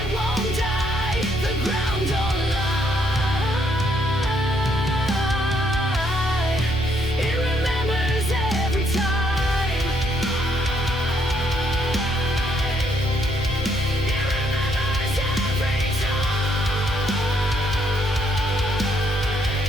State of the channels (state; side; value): normal; both; correlation 0.71